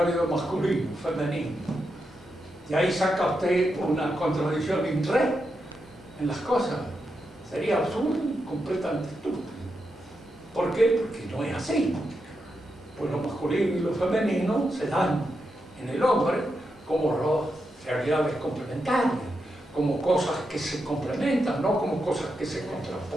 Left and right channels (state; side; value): normal; both; correlation 0.86